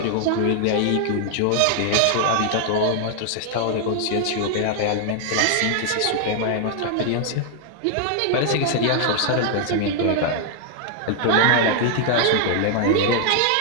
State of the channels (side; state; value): both; different; correlation 0.00